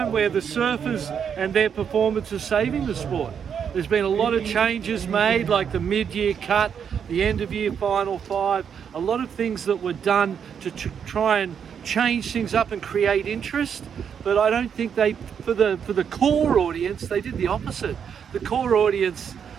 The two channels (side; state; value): left; quieter; 7.6 dB